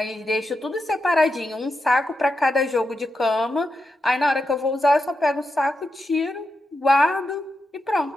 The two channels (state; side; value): normal; both; correlation 0.87